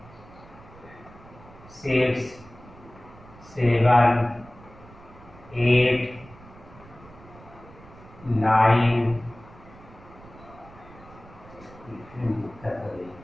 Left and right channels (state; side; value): noise; right; rumble, 21 dB below the sound